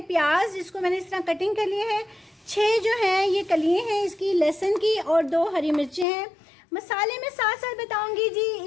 प्याज, जिसको मैंने इस तरह कटिंग कर लिए है। 6 जो हैं ये कलियाँ हैं इसकी लहसुन की, और 2 हरी मिर्चें हैं। मसाले में साथ साथ बताऊंगी जी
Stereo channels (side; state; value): right; drops out; at 6.1 s